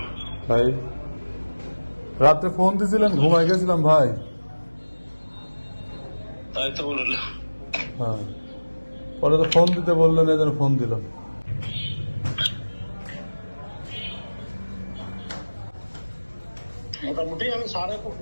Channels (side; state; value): both; inverted; correlation -1.00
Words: ভাই রাতে ফোন দিয়েছিলেন, ঘুমাই গেছিলাম ভাই। তাই তো বললাম। হ্যাঁ, পরে তো ফোন দিতে বললেন, এই জন্য ফোন দিলাম। মোটামুটি আমি স্যারের